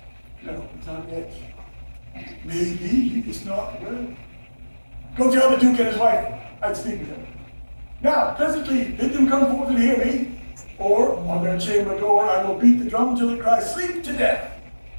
No, not yet. Maybe he is not well. Go tell the Duke and his wife I'd speak with them. Now, presently, bid them come forth and hear me, or on their chamber door I will beat the drum till it cries sleep to death.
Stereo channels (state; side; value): inverted; both; correlation -1.00